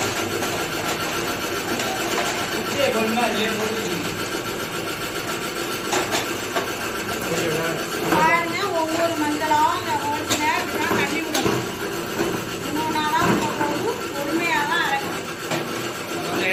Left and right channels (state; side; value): identical; both; correlation 1.00